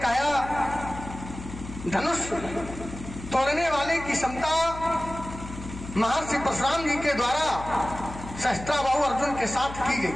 धनुष तोड़ने वाले की क्षमता महर्षि परशुराम जी के द्वारा सहस्त्राबाहु अर्जुन के साथ की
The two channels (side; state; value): left; noise; hum, 12 dB below the sound